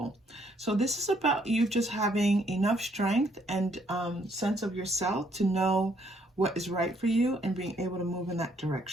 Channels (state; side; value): normal; both; correlation 0.69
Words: So this is about you just having enough strength and sense of yourself to know what is right for you and being able to move in that